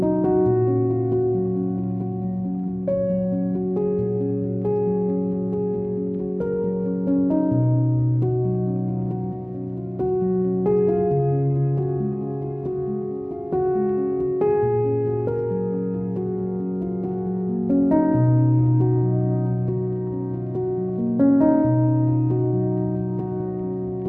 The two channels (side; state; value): left; late; 0.047 ms